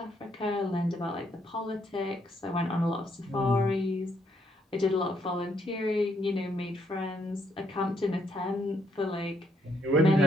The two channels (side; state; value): both; normal; correlation 0.73